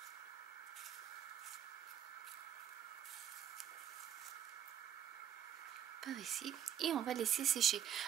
Par ici, et on va laisser sécher.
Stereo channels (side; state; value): left; quieter; 9.9 dB